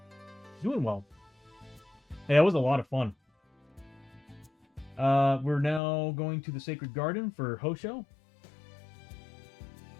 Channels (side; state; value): right; drops out; at 5.8 s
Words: doing well. Hey, that was a lot of fun. We're now going to the Sacred Garden for Hosho.